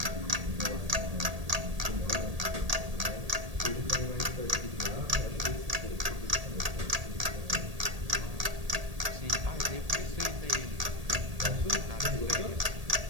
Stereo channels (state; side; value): late; left; 1.8 ms